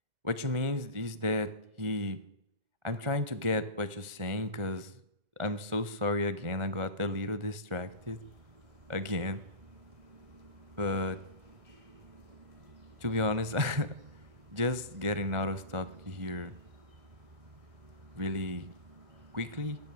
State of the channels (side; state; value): left; late; 1.4 ms